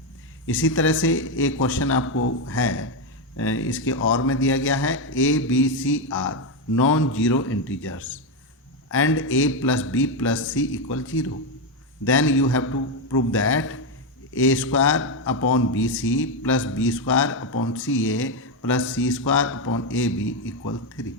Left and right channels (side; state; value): both; normal; correlation 0.06